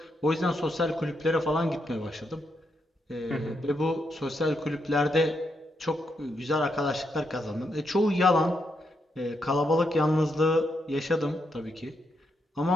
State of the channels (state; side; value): normal; both; correlation 0.80